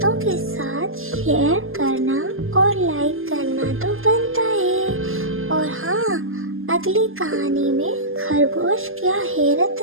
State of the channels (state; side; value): late; left; 0.60 ms